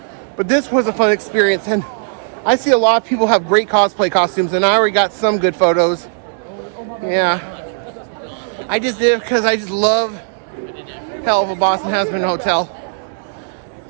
But this was a fun experience, and I see a lot of people have great cosplay costumes, and I already got some good photos. Yeah. I just did it because I just love Heelluva Boss and Has Been Hotel.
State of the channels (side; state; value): left; silent; digital silence